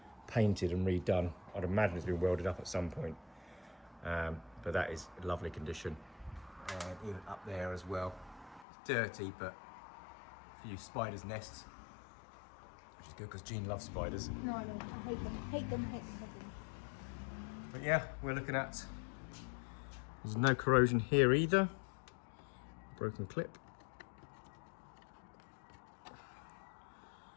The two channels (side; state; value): right; drops out; at 8.7 s